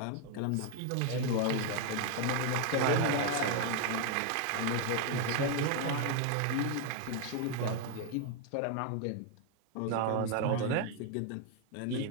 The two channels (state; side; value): different; both; correlation 0.00